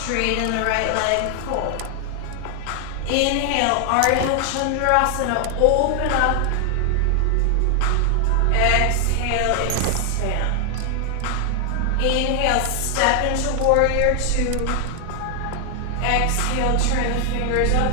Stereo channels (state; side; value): different; both; correlation 0.00